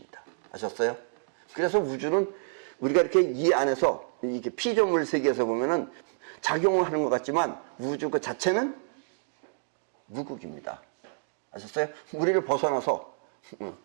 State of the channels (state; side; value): silent; left; digital silence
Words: 아셨어요? 그래서 우주는 우리가 이렇게 이 안에서 이게 피조물 세계에서 보면은 작용을 하는 것 같지만 우주 그 자체는 무극입니다. 아셨어요? 우리를 벗어나서